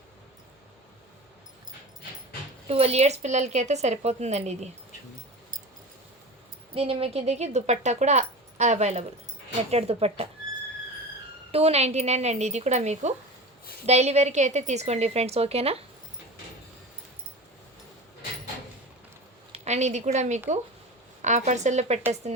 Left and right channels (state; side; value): normal; both; correlation 0.31